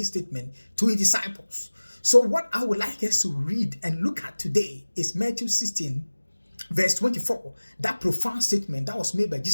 statement to his disciples. So what I would like us to read and look at today is Matthew 16 verse 24, that profound statement that was made by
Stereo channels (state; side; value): inverted; both; correlation -1.00